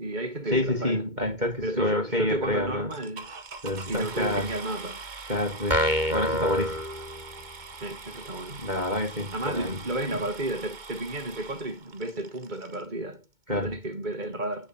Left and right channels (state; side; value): late; left; 2.2 ms